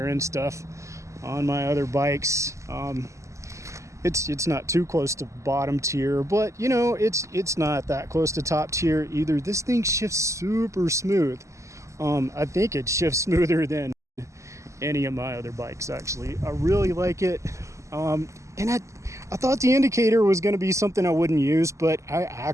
end stuff on my other bikes. It's not too close to bottom tier, but it's not that close to top tier either. This thing shifts super smooth. I think it shifts smoother than any of my other bikes, actually. I really like it. And I thought the indicator was going to be something I wouldn't use, but I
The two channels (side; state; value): left; late; 0.15 ms